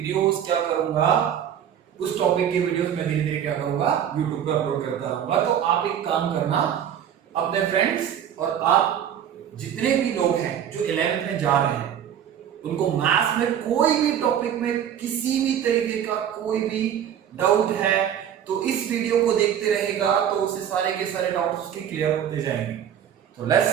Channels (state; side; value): quieter; left; 9.5 dB